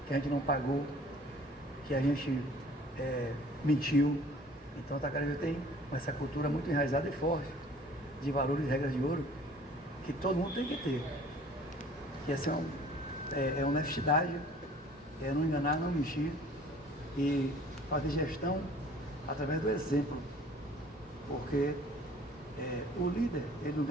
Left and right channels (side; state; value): both; normal; correlation 0.51